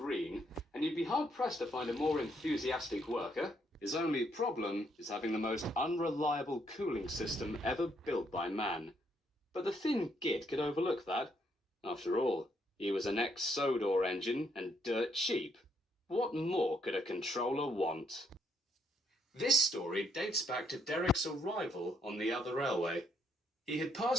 and you'd be hard-pressed to find a more enthusiastic worker. His only problem is having the most unreliable cooling system ever built by man. But the thin git could overlook that. After all, he was an ex-Sodor engine and dirt cheap. What more could a controller want? This story dates back to Derrick's arrival on the other railway. He had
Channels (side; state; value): both; normal; correlation 0.72